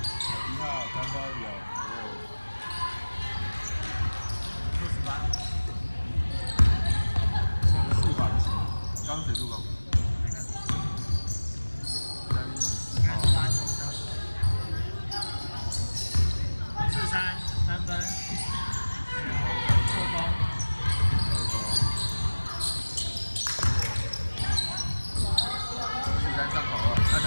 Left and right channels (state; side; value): inverted; both; correlation -1.00